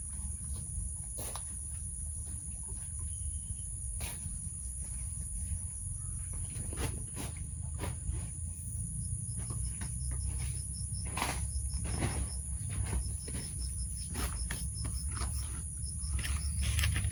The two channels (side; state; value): both; identical; correlation 1.00